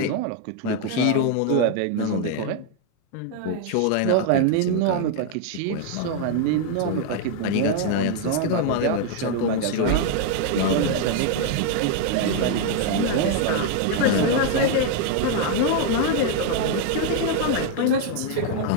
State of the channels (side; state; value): both; different; correlation 0.00